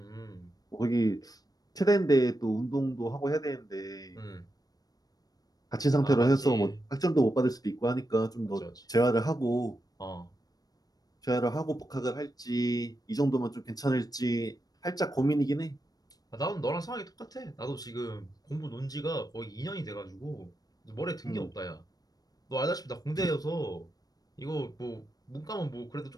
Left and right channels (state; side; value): late; right; 0.18 ms